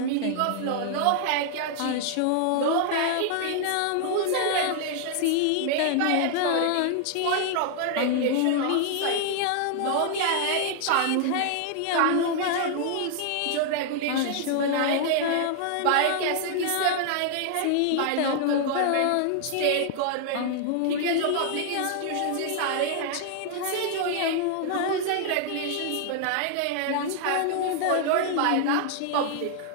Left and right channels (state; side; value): different; both; correlation 0.00